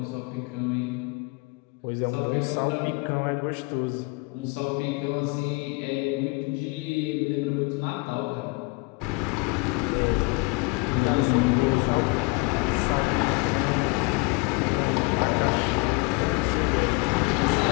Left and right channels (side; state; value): right; quieter; 27.6 dB